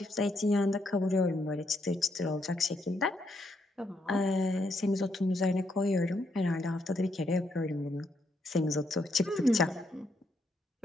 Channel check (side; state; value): both; normal; correlation 0.78